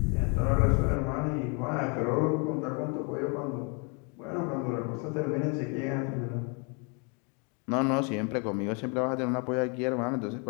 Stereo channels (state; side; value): quieter; right; 35.3 dB